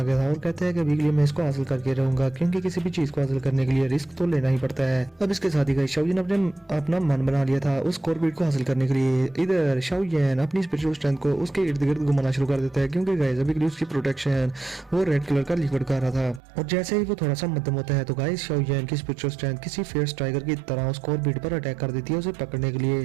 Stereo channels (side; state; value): left; drops out; at 16.4 s